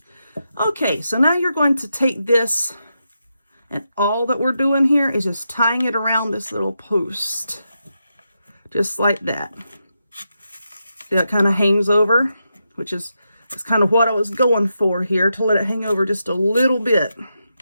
Okay, so now you're going to take this, and all that we're doing here is just tying it around this little post. Just like that. that kind of hangs over, which is kind of what I was going for here, to let it hang over just a little bit.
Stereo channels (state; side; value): inverted; both; correlation -0.86